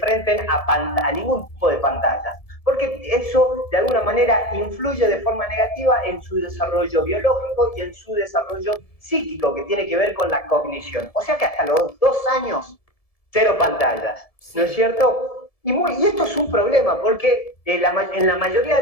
a ningún tipo de pantallas, porque eso de alguna manera influye de forma negativa en su desarrollo biológico y en su desarrollo psíquico, que tiene que ver con la cognición. O sea que hasta los 2 años, cero pantallas, ¿no es Sí. cierto? Y esto es un problema, porque en la mayoría de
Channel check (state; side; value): late; right; 1.7 ms